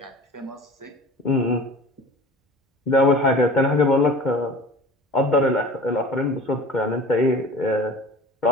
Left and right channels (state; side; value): normal; both; correlation 0.40